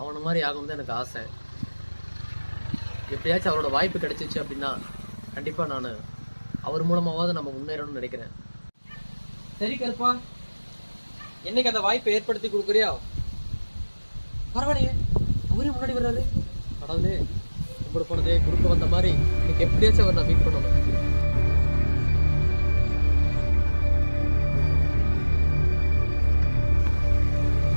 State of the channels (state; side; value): inverted; both; correlation -1.00